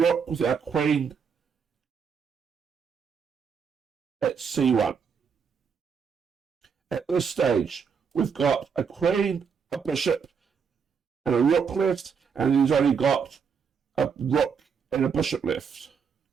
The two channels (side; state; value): left; quieter; 6.3 dB